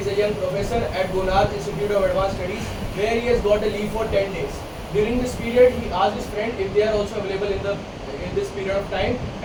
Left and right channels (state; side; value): identical; both; correlation 1.00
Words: a young professor at Gonad Institute of Advanced Studies where he has got a leave for 10 days. During this period, he asked his friend if they are also available in this period of time